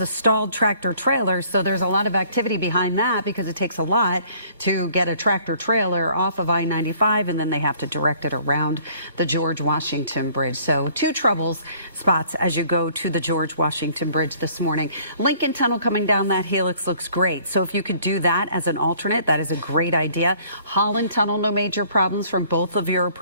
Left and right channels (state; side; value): inverted; both; correlation -0.57